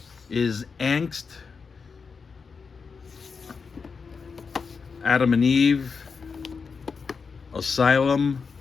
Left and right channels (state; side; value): quieter; right; 5.3 dB